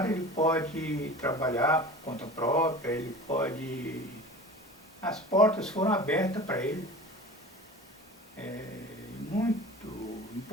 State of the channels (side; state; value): both; normal; correlation 0.37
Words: ele pode trabalhar por conta própria, ele pode... As portas foram abertas para ele. Muito